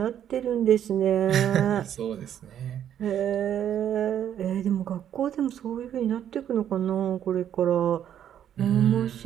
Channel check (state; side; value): quieter; left; 10.0 dB